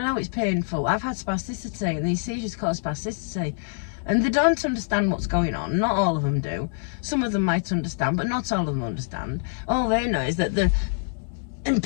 know it's painful. I've had spasticity, and these seizures cause spasticity, and they don't understand what's going on. Not all of them do. Some of them might understand, but not all of them understand. All they know is that they're in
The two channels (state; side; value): silent; right; digital silence